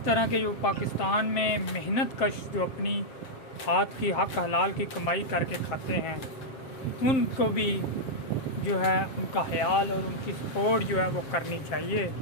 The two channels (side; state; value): right; late; 7.6 ms